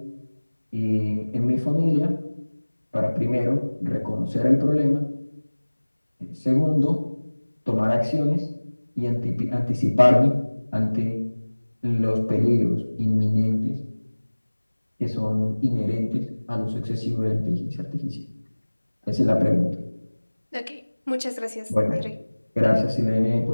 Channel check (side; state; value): both; inverted; correlation -1.00